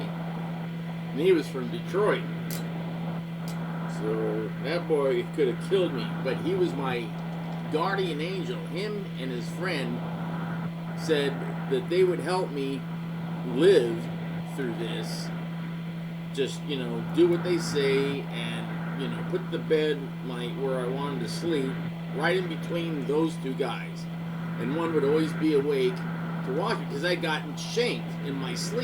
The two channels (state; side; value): identical; both; correlation 1.00